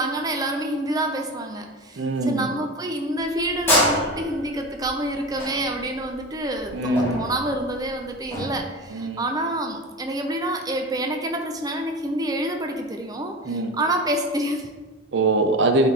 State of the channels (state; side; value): normal; both; correlation 0.26